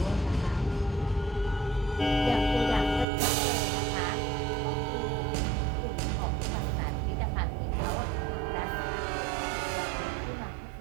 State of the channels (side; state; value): left; drops out; at 3.1 s